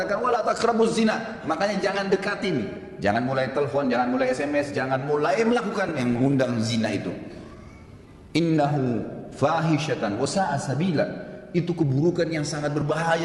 wala taqrabuz zina. Makanya jangan dekatin. Jangan mulai telepon, jangan mulai SMS, jangan mulai melakukan yang mengundang zina itu. Innahu fahishatan wa sa'a sabila. Itu keburukan yang sangat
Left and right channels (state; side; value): identical; both; correlation 1.00